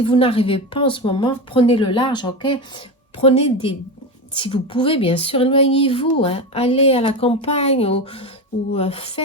vous n'arrivez pas en ce moment, prenez le large, ok? Prenez des... Si vous pouvez, bien sûr, éloignez-vous. Hein. Allez à la campagne ou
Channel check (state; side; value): normal; both; correlation 0.19